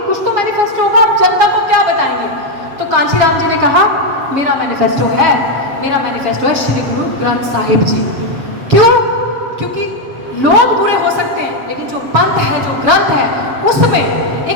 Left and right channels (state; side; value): late; left; 7.6 ms